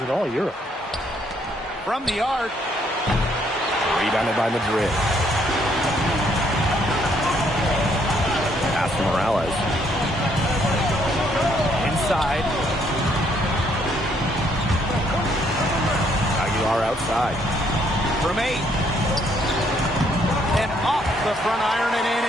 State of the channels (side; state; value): both; normal; correlation 0.69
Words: in all Europe. From the arc. Rebounded by Madrid. Pass to Morales. Inside. Aguilar outside. From 8. And off the front iron and in